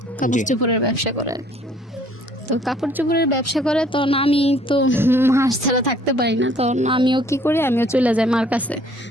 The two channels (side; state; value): both; normal; correlation 0.59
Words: কাপড় জি। চোপড়ের ব্যবসা করে আর কি। তো কাপড় চোপড়ের ব্যবসা করে, তখন আমি তো মাস ছাড়া থাকতে পারি না, তখন আমিও কি করি, আমিও চলে যাই মার কাছে,